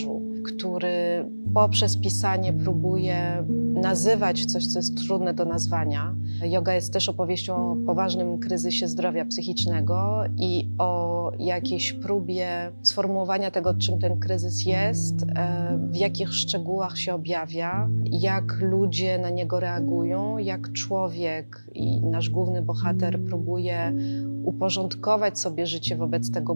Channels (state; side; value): inverted; both; correlation -1.00